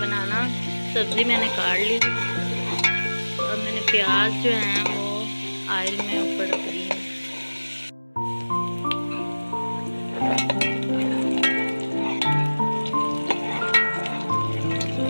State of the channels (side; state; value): both; inverted; correlation -1.00